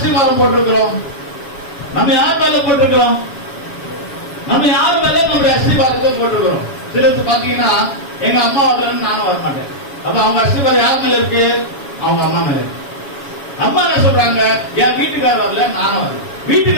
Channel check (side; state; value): right; late; 7.1 ms